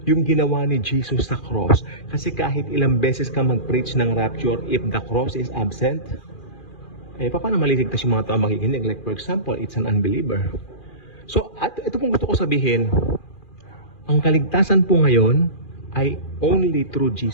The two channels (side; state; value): right; late; 2.4 ms